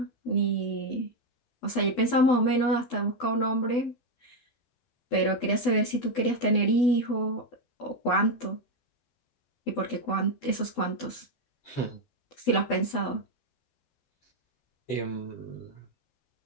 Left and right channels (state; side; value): late; right; 12 ms